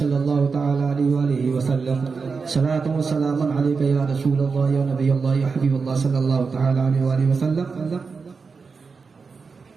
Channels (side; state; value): left; quieter; 4.9 dB